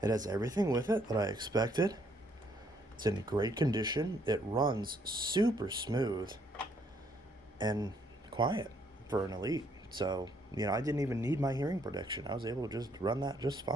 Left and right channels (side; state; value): both; normal; correlation 0.69